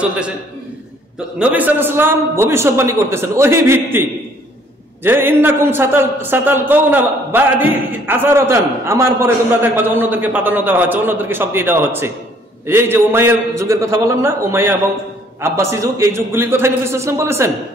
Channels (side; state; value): both; normal; correlation 0.61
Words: চলতেছে। তো নবী সাল্লাল্লাহু আলাইহি ওয়াসাল্লাম ভবিষ্যৎবাণী করতেছেন ওহী ভিত্তিক, যে ইন্নাকুম সাতালকাউনা বা'দি আসারাতান, আমার পরে তোমরা দেখবা যে অন্যদেরকে প্রাধান্য দেওয়া হচ্ছে, অন্যদেরকে সব দিয়ে দেওয়া হচ্ছে। এই যে উমাইয়ার যুগের কথা বললাম না, উমাইয়া এবং আব্বাসী যুগ, এই যুগগুলির কথাই নবী সাল্লাল্লাহু আলাইহি ওয়াসাল্লাম বলেছেন।